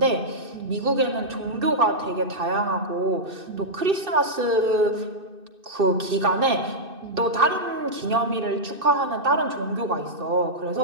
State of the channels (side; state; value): left; late; 2.6 ms